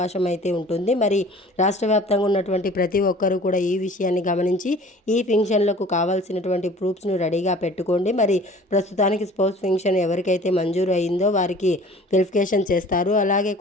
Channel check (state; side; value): normal; both; correlation 0.47